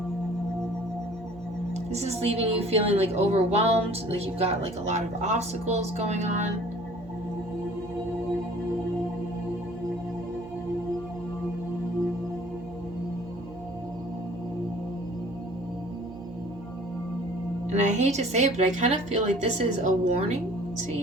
this is leaving you feeling like overwhelmed, like you've got like a lot of obstacles going on. And I hate to say it, but I kind of feel like this is a warning to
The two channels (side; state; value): right; noise; hum, 17 dB below the sound